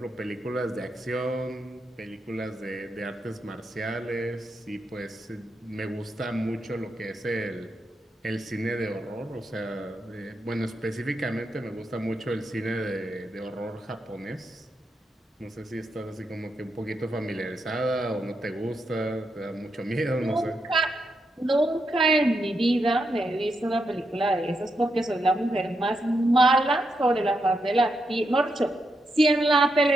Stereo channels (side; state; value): both; normal; correlation 0.83